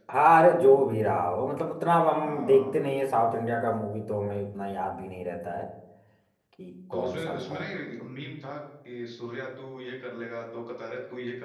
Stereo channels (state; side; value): identical; both; correlation 1.00